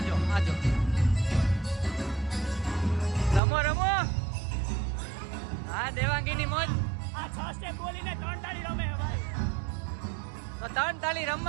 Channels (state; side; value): drops out; left; at 3.4 s